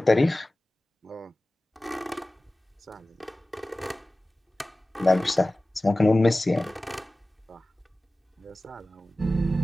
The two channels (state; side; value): normal; both; correlation 0.96